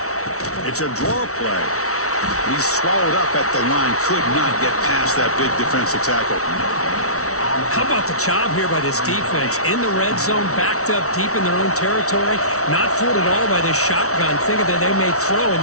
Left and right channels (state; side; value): late; right; 0.64 ms